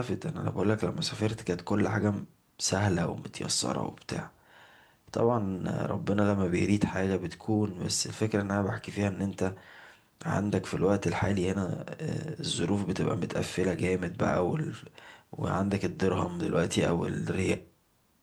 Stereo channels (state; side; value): identical; both; correlation 1.00